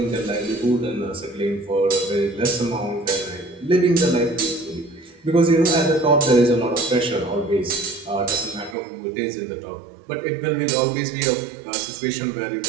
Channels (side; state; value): left; drops out; at 8.8 s